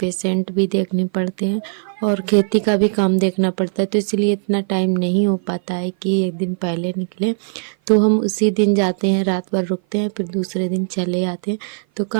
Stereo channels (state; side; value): silent; left; 56 dB below the other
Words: भी देखने पड़ते हैं, और खेती का भी काम देखना पड़ता है। तो इसलिए इतना टाइम नहीं हो पाता है कि एक दिन पहले निकले। तो हम उसी दिन जाते हैं, रात भर रुकते हैं, फिर दूसरे दिन चले आते हैं। तो